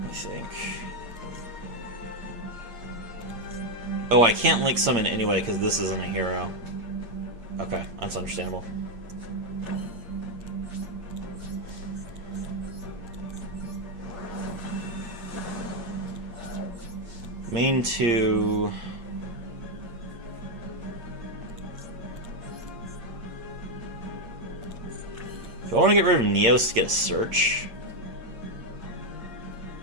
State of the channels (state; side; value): late; left; 8.6 ms